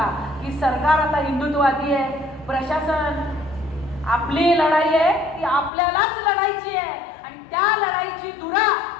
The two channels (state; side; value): drops out; right; at 5.7 s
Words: की सरकार आता हिंदुत्ववादी आहे, प्रशासन आपली लढाई आहे ती आपल्यालाच लढायची आहे आणि त्या लढाईची धुरा